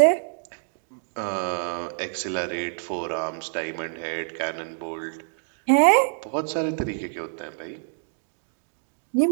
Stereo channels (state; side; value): silent; left; digital silence